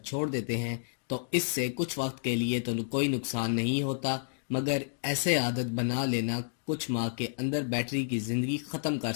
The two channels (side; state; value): right; silent; digital silence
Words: چھوڑ دیتے ہیں تو اس سے کچھ وقت کے لیے تو کوئی نقصان نہیں ہوتا، مگر ایسے عادت بنا لینا کچھ ماہ کے اندر بیٹری کی زندگی ختم کر